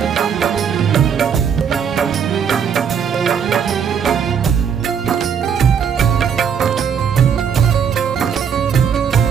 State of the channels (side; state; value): left; quieter; 7.4 dB